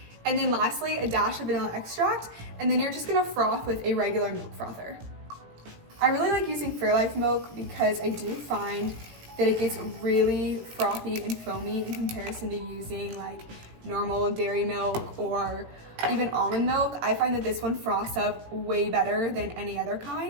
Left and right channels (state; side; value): late; left; 17 ms